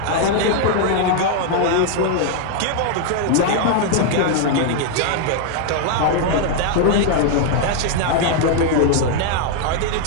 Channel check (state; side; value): different; both; correlation 0.00